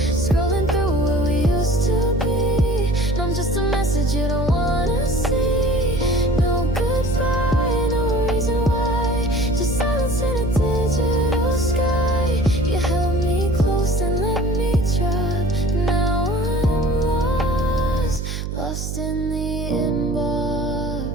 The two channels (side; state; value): right; noise; hum, 5 dB below the sound